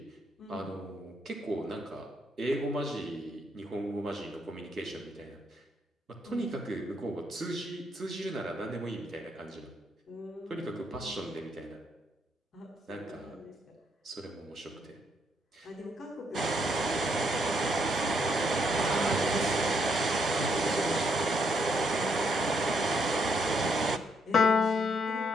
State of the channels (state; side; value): normal; both; correlation 0.73